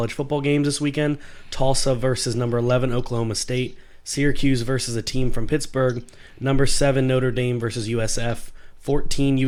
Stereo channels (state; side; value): identical; both; correlation 1.00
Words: football games this weekend. Tulsa versus number 11 Oklahoma State, Syracuse versus a team from Pittsburgh, number 7 Notre Dame versus USF, 14